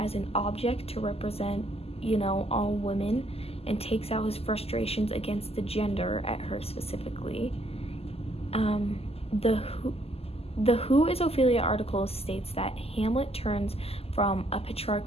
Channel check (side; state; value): right; late; 0.29 ms